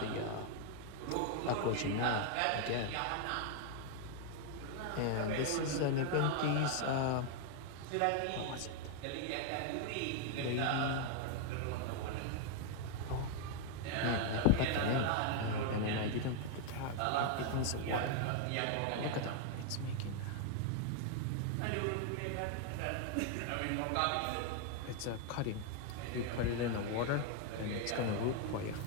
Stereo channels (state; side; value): different; both; correlation 0.00